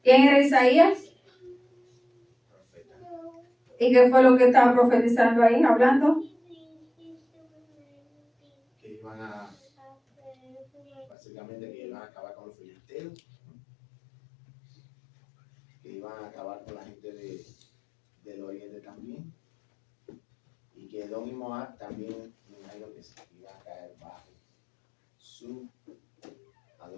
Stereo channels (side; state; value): right; drops out; at 11.1 s